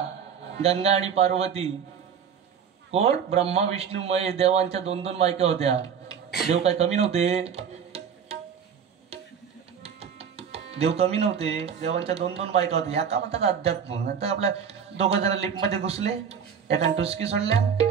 गंगा आणि पार्वती. कोण, ब्रह्मा विष्णू महेश. देवांच्या 2-2 बायका होत्या. देव काय कमी नव्हते, देव कमी नव्हते. देवांच्या 2-2 बायका होत्या. या का म्हणतात अध्यात्म. नंतर आपल्या 2 जण लिफ्टमध्ये घुसले, एकान टुसकी सोडल्या,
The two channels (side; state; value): left; quieter; 7.4 dB